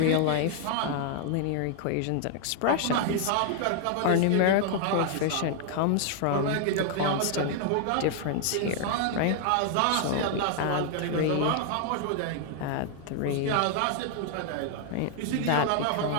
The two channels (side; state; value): both; different; correlation 0.00